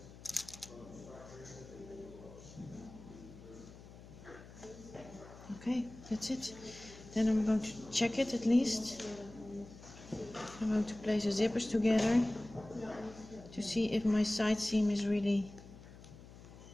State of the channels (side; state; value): left; noise; hum, 18 dB below the sound